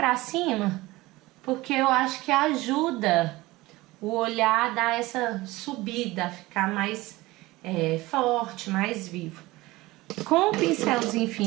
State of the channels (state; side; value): quieter; left; 19.8 dB